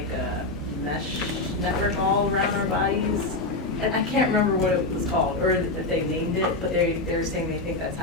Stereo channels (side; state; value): right; quieter; 3.0 dB